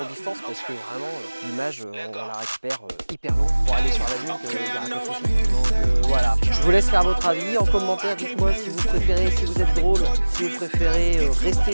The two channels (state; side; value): inverted; both; correlation -1.00